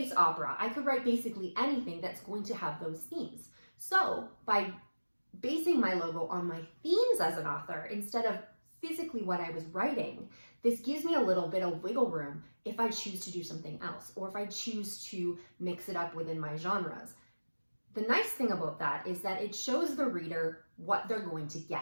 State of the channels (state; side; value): inverted; both; correlation -1.00